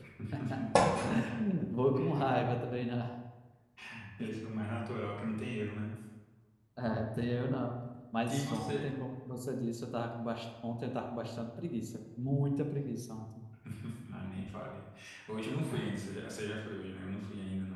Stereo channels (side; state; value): both; identical; correlation 1.00